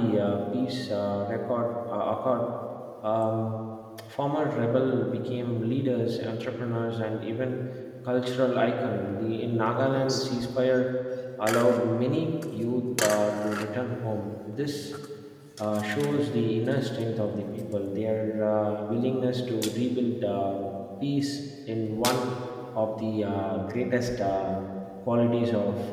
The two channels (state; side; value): identical; both; correlation 1.00